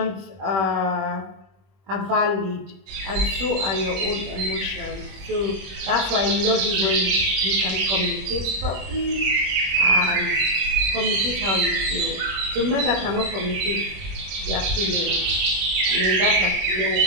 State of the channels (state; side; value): late; left; 21 ms